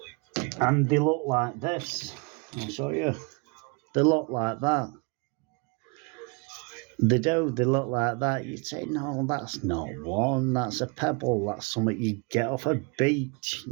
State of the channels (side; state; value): left; quieter; 31.9 dB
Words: And they look like this. I'll show you. They look like that. They do. They look like that. You'd say, no, that's not one. That's a pebble. That's something you get off a beach.